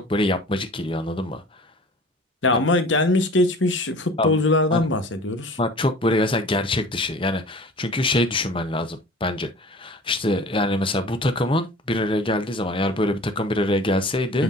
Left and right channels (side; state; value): both; normal; correlation 0.43